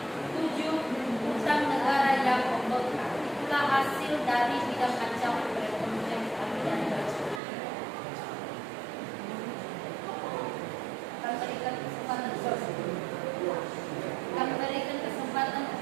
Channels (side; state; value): left; drops out; at 7.4 s